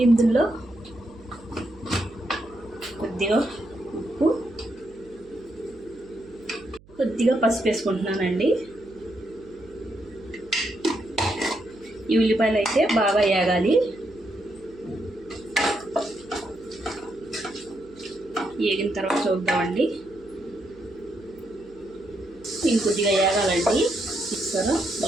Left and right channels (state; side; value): noise; right; hum, 25 dB below the sound